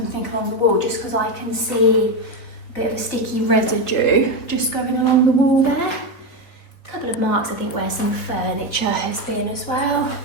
along the wall, just because I can see a bit of a sticky residue just going along the wall there. A couple of marks, I think, where some furniture has been as well.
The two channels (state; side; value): late; right; 4.2 ms